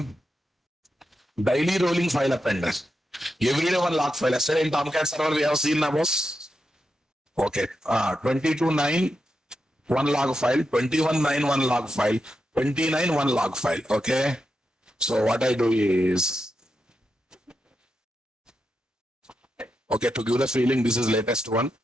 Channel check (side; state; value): both; normal; correlation 0.87